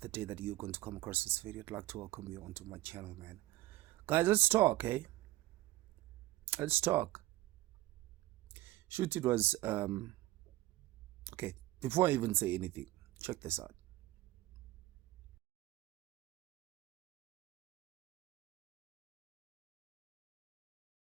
the day that you're going to come across this video, I'd like to welcome you onto my channel, man. Guys, let's talk, eh? Let's talk. Shoot, it was, okay, before I even say anything, check this out.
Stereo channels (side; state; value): left; quieter; 16.9 dB